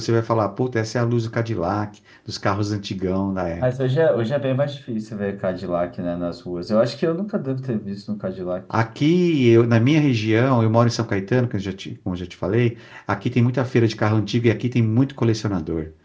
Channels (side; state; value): both; identical; correlation 1.00